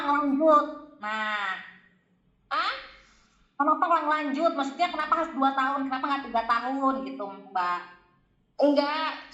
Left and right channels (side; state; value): both; identical; correlation 1.00